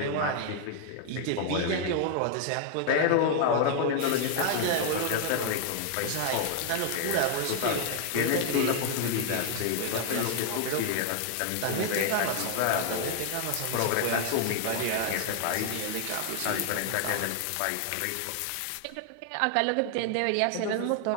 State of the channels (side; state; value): both; different; correlation 0.00